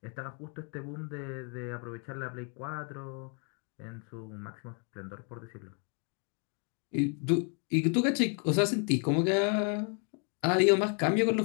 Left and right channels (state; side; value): quieter; right; 39.6 dB